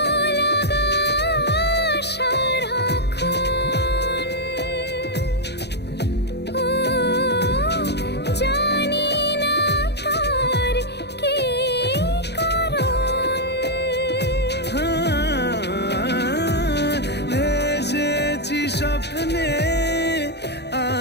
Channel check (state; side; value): late; right; 0.49 ms